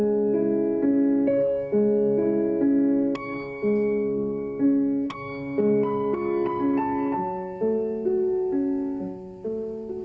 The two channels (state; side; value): identical; both; correlation 1.00